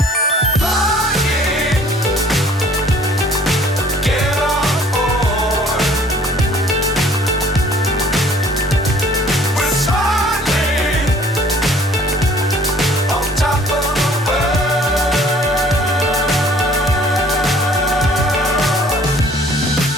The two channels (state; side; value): normal; both; correlation 0.55